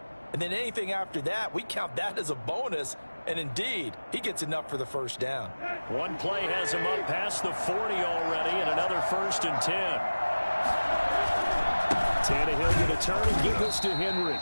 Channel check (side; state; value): both; inverted; correlation -1.00